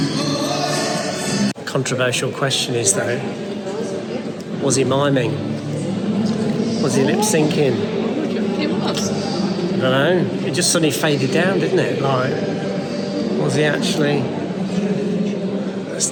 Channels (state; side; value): identical; both; correlation 1.00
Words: Controversial question is though, was he miming? Was he lip syncing? It was. I don't know. It just suddenly faded down, didn't it? Like, was he actually? That's